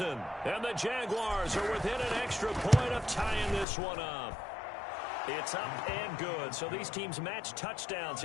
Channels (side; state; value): right; drops out; at 3.7 s